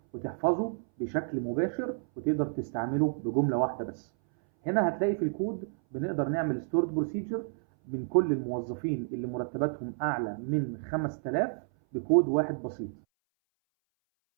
وتحفظه بشكل مباشر وتقدر تستعمله بجمله واحده بس. هنا هتلاقي في الكود بنقدر نعمل ستورد بروسيجر من كل الموظفين اللي مرتباتهم اعلى من 5000 بكود واحد بسيط.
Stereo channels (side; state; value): left; silent; 58 dB below the other